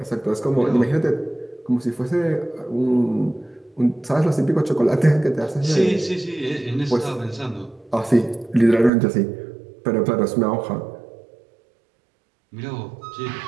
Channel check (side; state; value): left; drops out; at 8.9 s